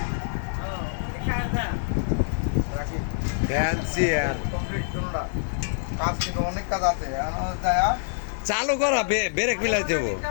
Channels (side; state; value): right; silent; digital silence